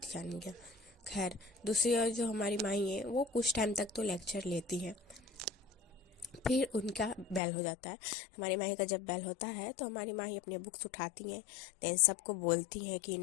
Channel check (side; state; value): right; drops out; at 7.4 s